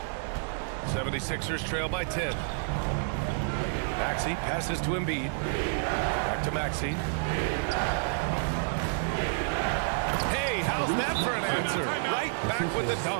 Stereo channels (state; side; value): silent; left; digital silence